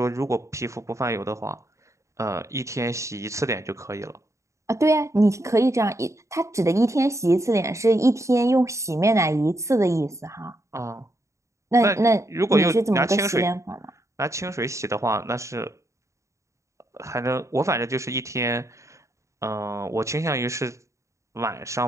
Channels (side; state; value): left; late; 0.14 ms